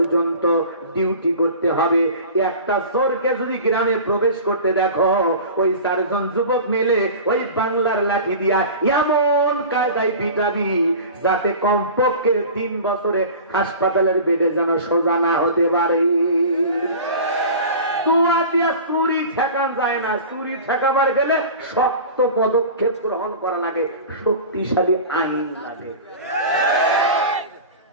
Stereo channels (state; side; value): inverted; both; correlation -0.36